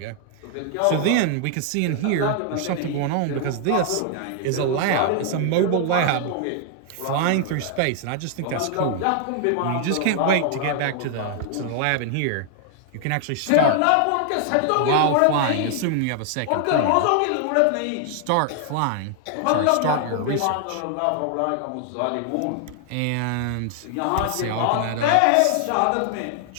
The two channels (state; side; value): different; both; correlation 0.00